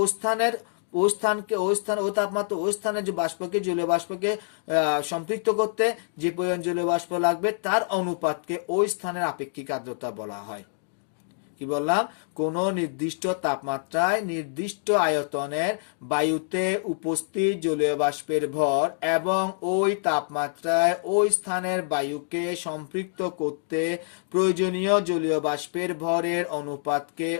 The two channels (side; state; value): right; silent; digital silence